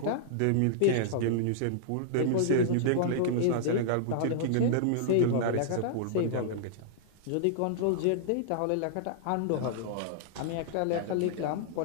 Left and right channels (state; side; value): different; both; correlation -0.02